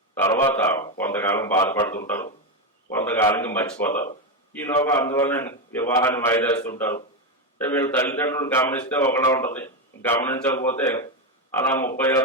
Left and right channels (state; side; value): normal; both; correlation 0.10